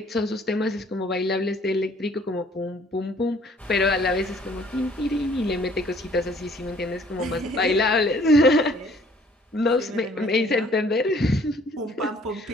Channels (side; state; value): both; normal; correlation 0.58